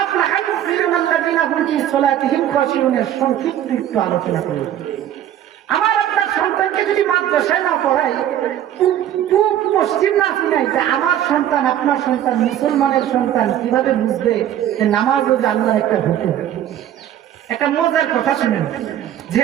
আফলাহাল মুমিনুনা আল্লাযিনা হুম ফি সালাতিহিম খাশিউন। সংক্ষিপ্ত একটু আলোচনা করব। আমার আপনার সন্তানকে যদি মাদ্রাসায় না পড়াই, পূব পশ্চিম না শুনাই, আমার সন্তান আপনার সন্তান মুসলমানের সন্তান কিভাবে বুঝবে যে নামাজ ও আল্লাহর একটা হুকুম? একটা মজার কথা শুনেন।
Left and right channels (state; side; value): quieter; left; 11.3 dB